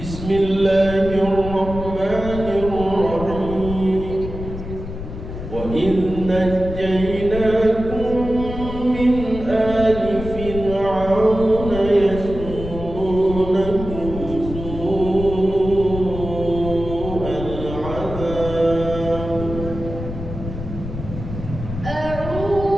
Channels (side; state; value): left; noise; rumble, 8 dB below the sound